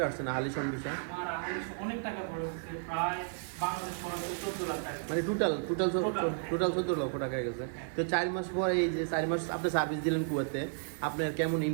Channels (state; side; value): silent; left; digital silence